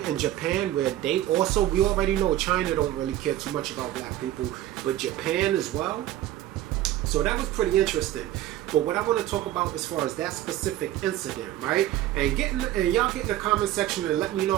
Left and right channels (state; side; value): quieter; left; 13.7 dB